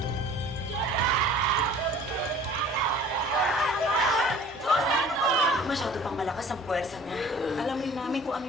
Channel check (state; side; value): normal; both; correlation 0.48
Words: Masyado pang malakas ang puwersa niya. Alam rin namin kung ano